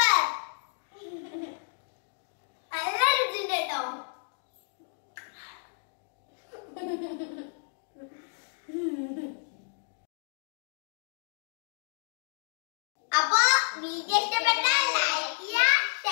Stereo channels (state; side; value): silent; right; digital silence